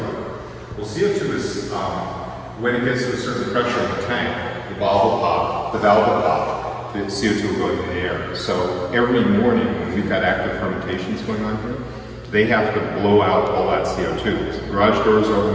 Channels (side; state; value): both; identical; correlation 1.00